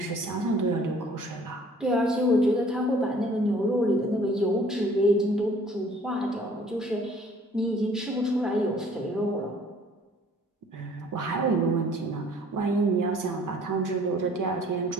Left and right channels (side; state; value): both; normal; correlation 0.55